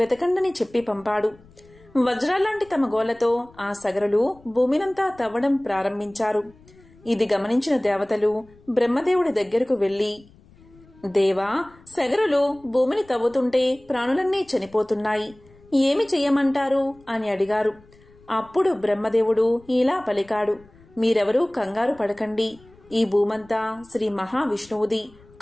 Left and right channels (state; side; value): noise; left; rumble, 27 dB below the sound